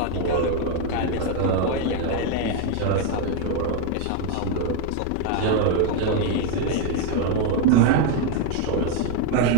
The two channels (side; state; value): both; different; correlation 0.01